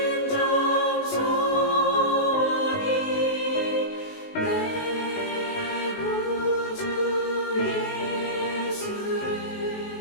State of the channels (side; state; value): right; late; 19 ms